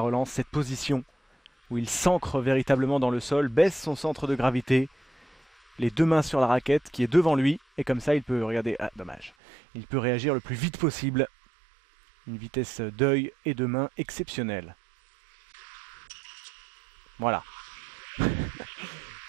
relance, cette position où il s'ancre véritablement dans le sol, baisse son centre de gravité, les deux mains sur la raquette qui est devant lui et comme ça il peut, regardez, dommage, il peut réagir le plus vite possible, une vitesse d'œil et de main exceptionnelle. Voilà,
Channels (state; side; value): drops out; left; at 9.3 s